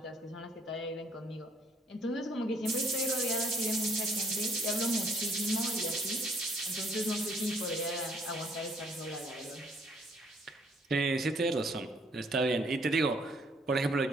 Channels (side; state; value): both; normal; correlation 0.65